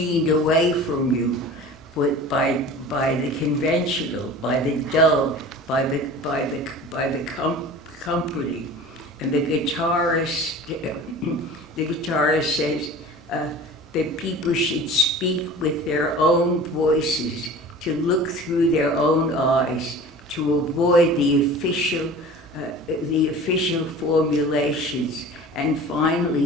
away from you by the conventional, by the dull, by the comforting. And the guitarist says that people should speak with their own voices, to look through their own eyes, to avoid the official formulations. And finally,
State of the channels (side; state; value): both; normal; correlation 0.39